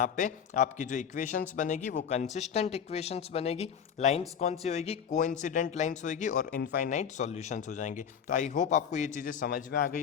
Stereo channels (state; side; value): quieter; right; 7.7 dB